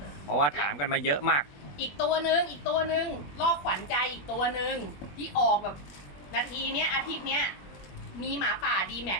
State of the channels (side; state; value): right; late; 21 ms